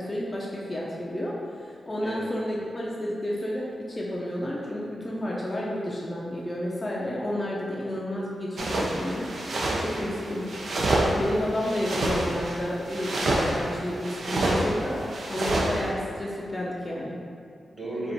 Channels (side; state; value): both; normal; correlation 0.89